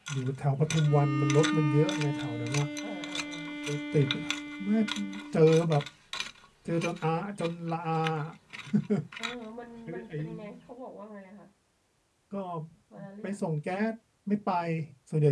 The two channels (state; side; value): identical; both; correlation 1.00